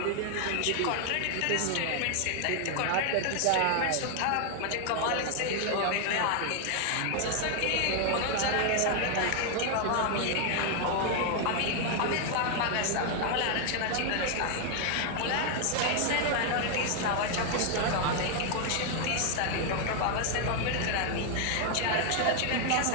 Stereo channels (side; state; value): both; different; correlation 0.00